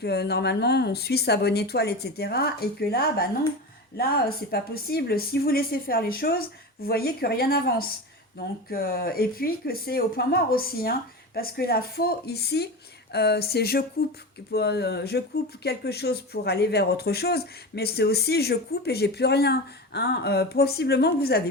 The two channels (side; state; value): both; normal; correlation 0.26